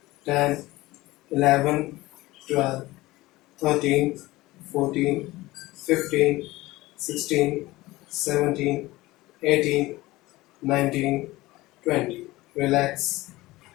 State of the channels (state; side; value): quieter; right; 19.0 dB